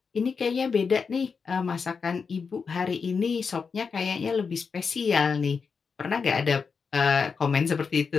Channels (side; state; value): right; quieter; 5.5 dB